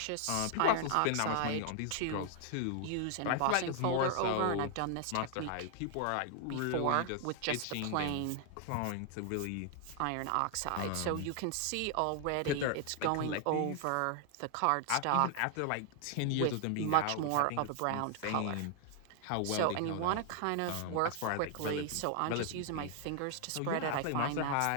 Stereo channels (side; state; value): both; different; correlation 0.00